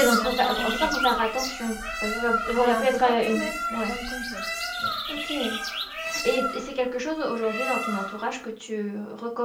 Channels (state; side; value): identical; both; correlation 1.00